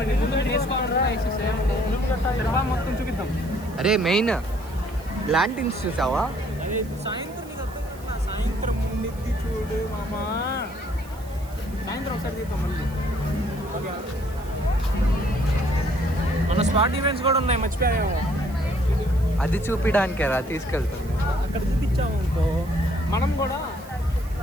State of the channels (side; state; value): right; noise; hiss, 23 dB below the sound